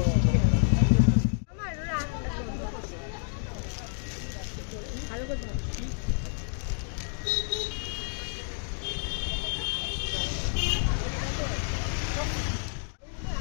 আমার ভালো করে ধরো।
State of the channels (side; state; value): right; silent; 58 dB below the other